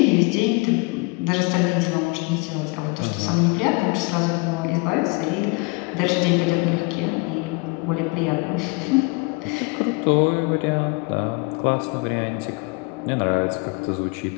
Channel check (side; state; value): right; quieter; 28.5 dB